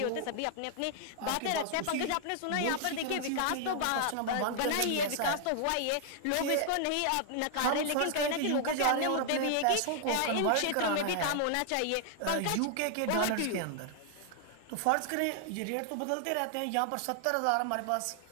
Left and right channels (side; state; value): both; different; correlation 0.00